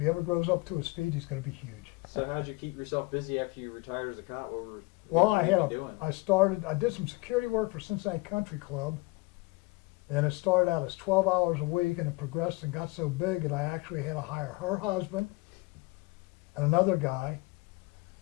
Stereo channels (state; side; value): quieter; right; 24.3 dB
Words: ever grows up to his feet, he's going to be huge. So how'd you keep yourself busy after you retired as a cop? Well, what were you doing? I did some security work for Cincinnati Country Club, and it started out as 12 hours a week, and it progressed and got so big that I actually had to hire her husband and another guy,